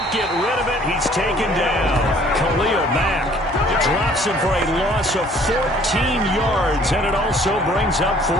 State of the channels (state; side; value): normal; both; correlation 0.56